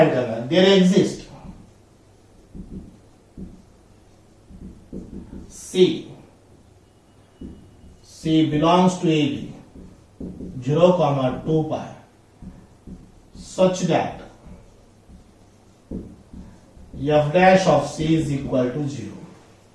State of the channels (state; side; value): identical; both; correlation 1.00